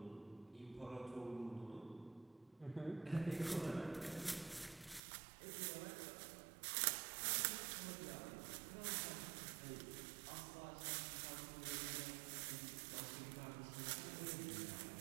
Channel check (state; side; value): drops out; left; at 5.0 s